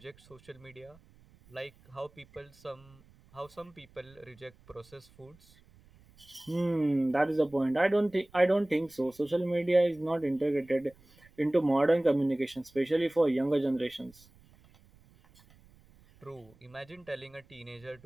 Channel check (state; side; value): noise; right; rumble, 27 dB below the sound